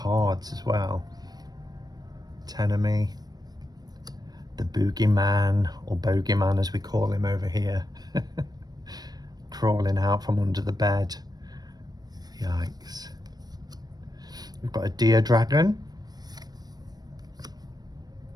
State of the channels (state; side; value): late; left; 0.19 ms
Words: as well. Tenemy. The Boogeyman, or Bogeyman as we call him over here. Crawling out from under the bed. Yikes. We've got a deer dragon.